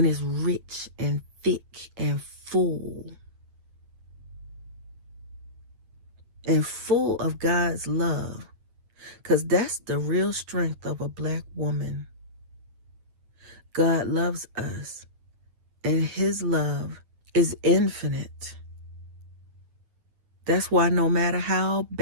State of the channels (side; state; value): left; late; 9.0 ms